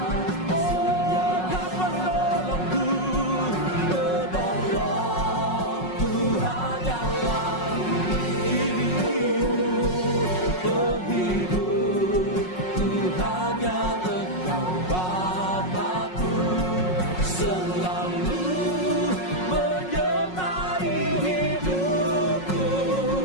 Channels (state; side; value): late; right; 5.5 ms